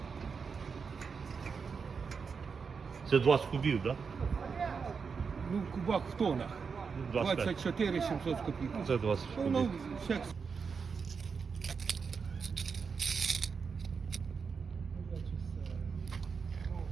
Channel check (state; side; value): quieter; left; 5.6 dB